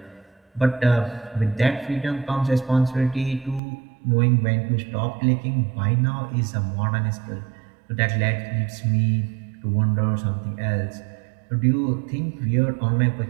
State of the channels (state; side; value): drops out; left; at 3.6 s